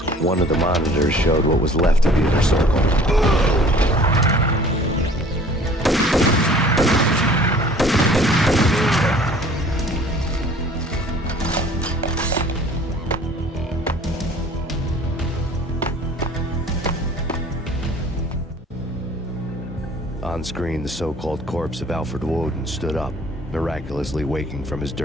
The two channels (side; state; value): both; normal; correlation 0.50